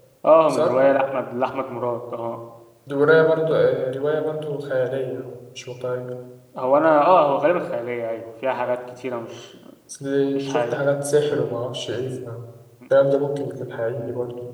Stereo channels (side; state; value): both; identical; correlation 1.00